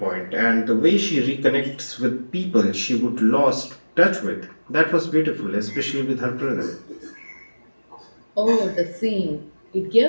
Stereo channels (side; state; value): both; inverted; correlation -1.00